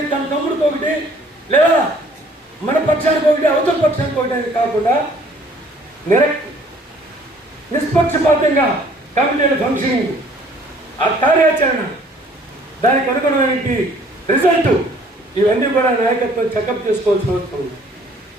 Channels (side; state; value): both; normal; correlation 0.57